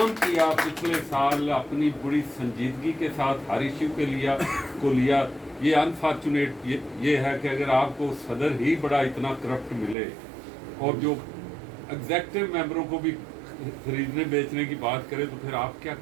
किया पिछले साल अपनी बड़ी संजीदगी के साथ हर इशू के लिया। ये अनफॉर्चुनेट ये है कि अगर आपको सदर ही बड़ा इतना करप्ट मिले और जो एग्जेक्टिव मेंबरों को भी खरीदने बेचने की बात करे तो फिर आप क्या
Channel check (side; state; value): left; drops out; at 10.0 s